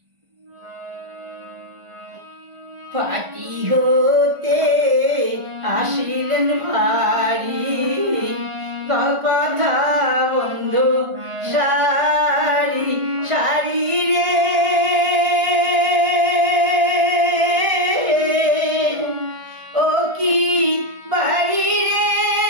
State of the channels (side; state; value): left; late; 1.5 ms